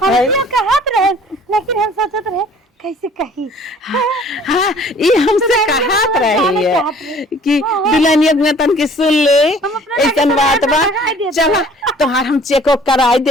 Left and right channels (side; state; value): both; normal; correlation 0.52